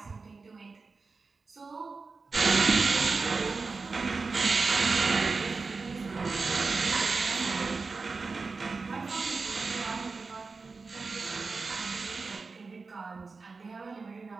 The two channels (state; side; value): quieter; left; 4.2 dB